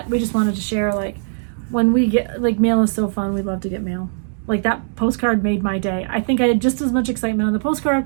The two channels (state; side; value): silent; left; digital silence